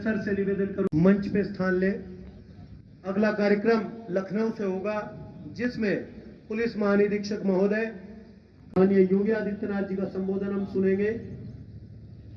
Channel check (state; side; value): identical; both; correlation 1.00